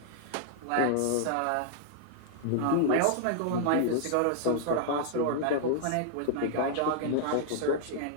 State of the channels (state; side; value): different; both; correlation -0.01